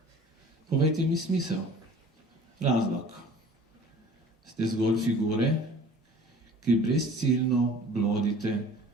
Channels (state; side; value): normal; both; correlation 0.47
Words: Povejte mi smisel. Razlog. Ste zgolj figure, ki brezciljno blodite